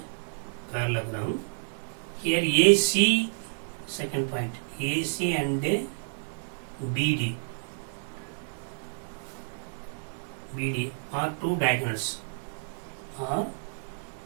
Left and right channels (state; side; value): silent; left; digital silence